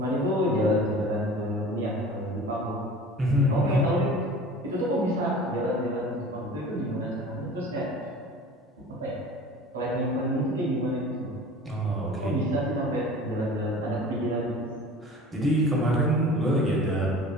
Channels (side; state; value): both; normal; correlation 0.42